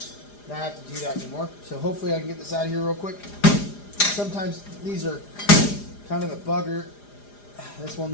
not have to do that anymore. So hopefully I can get this out of here real quick. Sometimes these are kind of a bugger. This one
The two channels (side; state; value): right; late; 4.9 ms